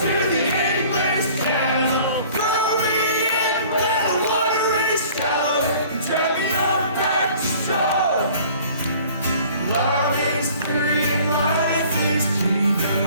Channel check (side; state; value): both; inverted; correlation -0.51